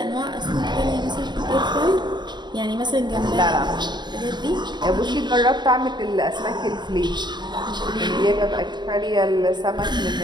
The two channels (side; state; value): left; late; 0.21 ms